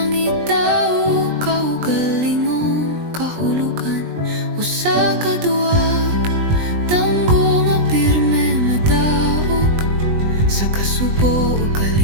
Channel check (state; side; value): late; left; 20 ms